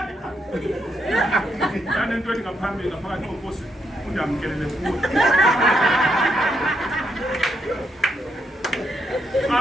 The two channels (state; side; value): normal; both; correlation 0.78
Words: nento ethi ngaphambili ngaphakathi kokosi undamkelele kuwe